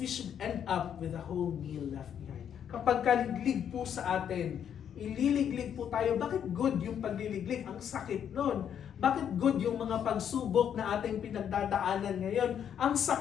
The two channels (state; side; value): quieter; right; 8.8 dB